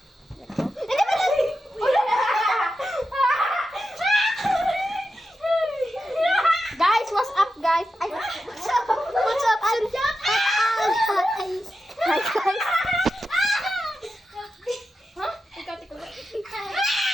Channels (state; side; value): normal; both; correlation 0.89